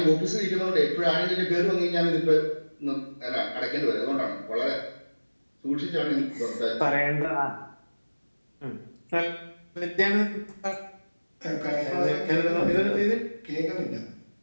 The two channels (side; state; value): both; inverted; correlation -1.00